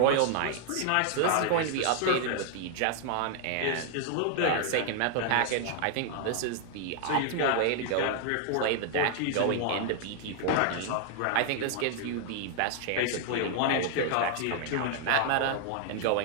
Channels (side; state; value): both; different; correlation 0.00